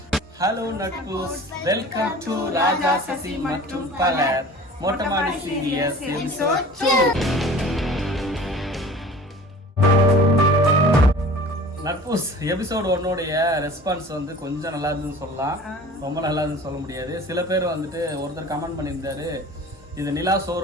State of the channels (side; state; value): both; normal; correlation 0.43